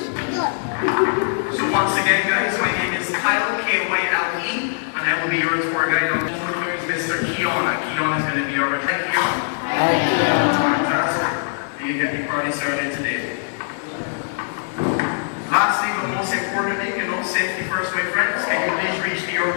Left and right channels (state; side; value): silent; right; 61 dB below the other